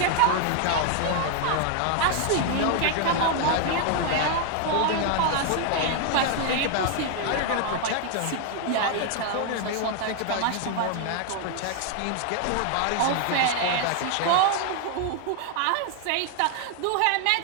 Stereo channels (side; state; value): both; different; correlation 0.00